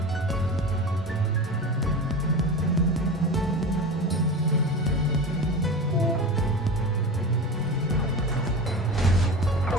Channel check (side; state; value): both; normal; correlation 0.29